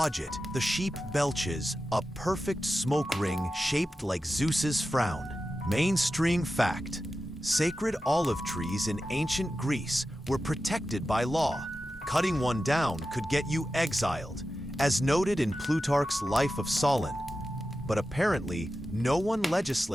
it, the sheep belches a perfect smoke ring shaped like Zeus's frown. Mainstream fact: sacred olive trees in ancient Greece were protected by law. Cutting one down could get you exiled, as noted in Plutarch's Life of Solon. But apparently, no one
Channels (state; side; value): normal; both; correlation 0.92